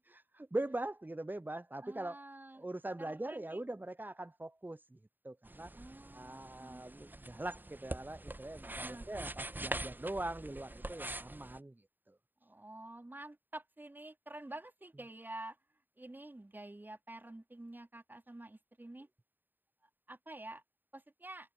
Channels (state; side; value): late; left; 0.091 ms